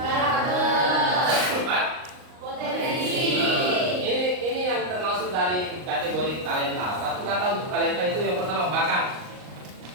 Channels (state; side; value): late; left; 38 ms